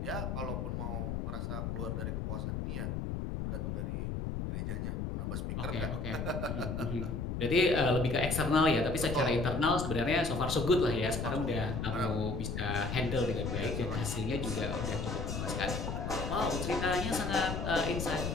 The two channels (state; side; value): noise; left; rumble, 3 dB below the sound